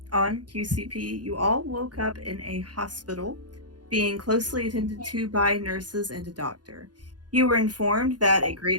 on QCP, you all woke up in a hospital, being closely attended to by nurses and a doctor. You were informed that a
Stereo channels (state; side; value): late; left; 0.69 ms